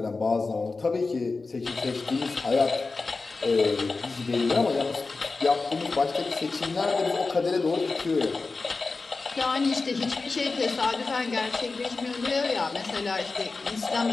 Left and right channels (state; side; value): quieter; right; 3.9 dB